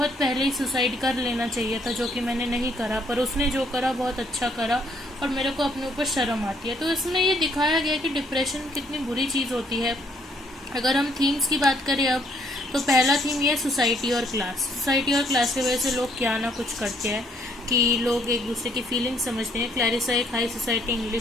पहले ही सुसाइड कर लेना चाहिए था, जो कि मैंने नहीं करा। पर उसने जो करा बहुत अच्छा करा और मेरे को अपने ऊपर शर्म आती है। तो इसमें ये दिखाया गया कि डिप्रेशन कितनी बुरी चीज़ होती है। अगर हम थीम्स की बात करें अब, तो पहला थीम ये सोसाइटी और क्लास। सोसाइटी और क्लास की वजह से लोग क्या ना कुछ करते हैं कि लोग एक दूसरे की फीलिंग्स समझते हैं। क्लैरिसा एक हाई सोसाइटी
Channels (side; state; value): both; normal; correlation 0.67